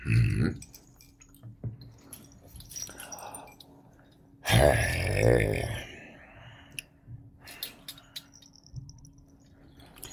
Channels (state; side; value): identical; both; correlation 1.00